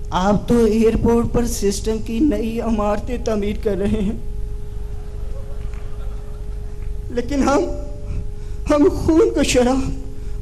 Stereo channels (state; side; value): identical; both; correlation 1.00